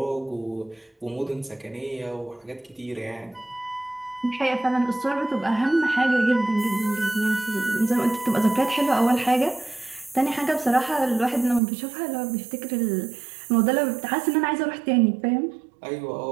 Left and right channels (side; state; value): left; drops out; at 11.6 s